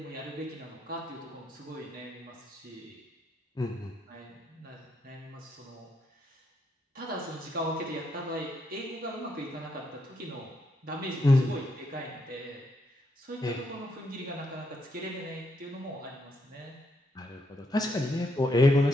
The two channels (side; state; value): both; normal; correlation 0.77